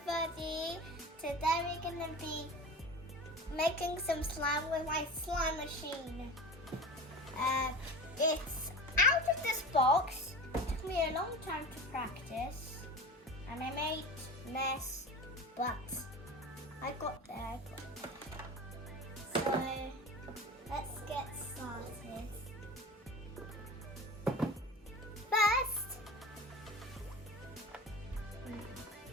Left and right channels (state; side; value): normal; both; correlation 0.33